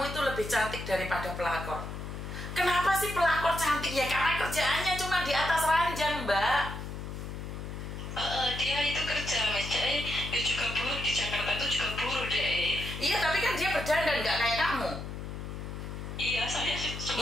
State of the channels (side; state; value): left; noise; hum, 7 dB below the sound